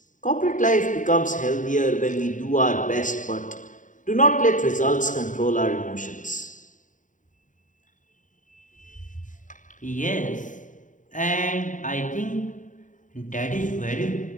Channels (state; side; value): late; right; 0.37 ms